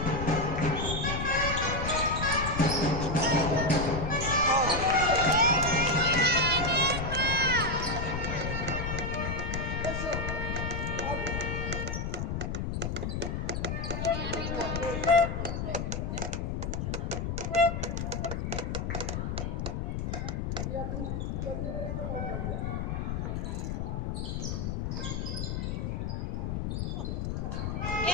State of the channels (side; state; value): left; noise; rumble, 2 dB below the sound